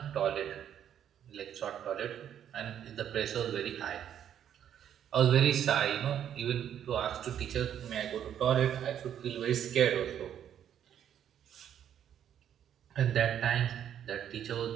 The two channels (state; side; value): quieter; left; 9.7 dB